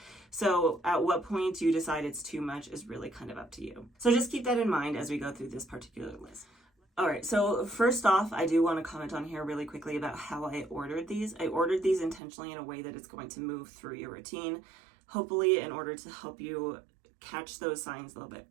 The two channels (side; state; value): left; drops out; at 12.2 s